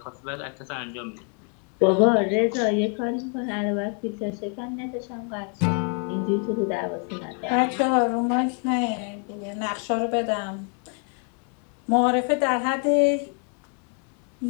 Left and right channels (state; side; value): quieter; right; 39.6 dB